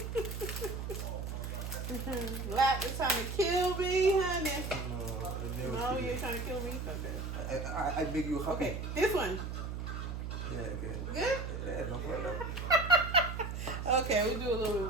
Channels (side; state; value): right; noise; hum, 5 dB below the sound